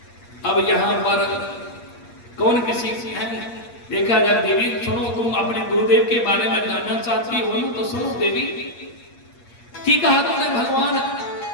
अब यहां पर कौन किसी की है, देखा जाए देवी सुनो, तुम अपने गुरुदेव के बारे में जानना चाहती हो तो सुनो देवी। ठीक कहा तुमने, भगवान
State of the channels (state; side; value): late; right; 8.5 ms